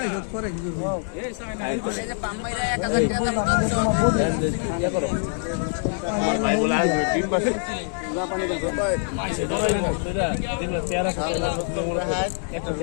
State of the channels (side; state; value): right; silent; 61 dB below the other